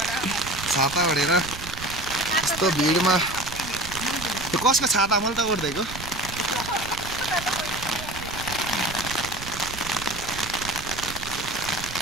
छाता ओढेर यस्तो भिडमा कसको छाता मैले त ओढ्दैको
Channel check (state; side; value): noise; right; rumble, 12 dB below the sound